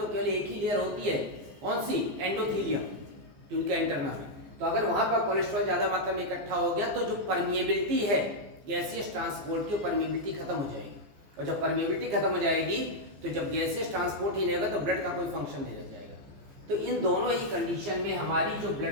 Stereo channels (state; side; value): late; left; 15 ms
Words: केवल एक ही लेयर होती है, कौन सी, एंडोथीलियम, ट्यूनिका इंटरना। तो अगर वहां पर कोलेस्ट्रॉल ज्यादा मात्रा में इकट्ठा हो गया तो जो परमिएबिलिटी है गैसियस ट्रांसपोर्ट की, परमिएबिलिटी खत्म हो जाएगी। और जब परमिएबिलिटी खत्म हो जाएगी तो जब गैसियस ट्रांसपोर्ट ही नहीं होगा तो ब्लड का कोई फंक्शन नहीं रह जाएगा। तो इन दोनों ही कंडीशन में हमारी जो